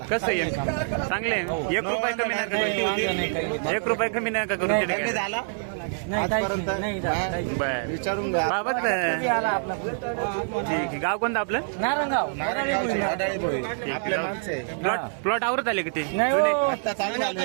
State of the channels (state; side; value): silent; left; 57 dB below the other